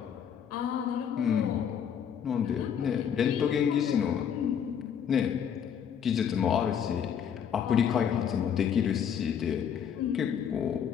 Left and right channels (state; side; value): quieter; right; 8.2 dB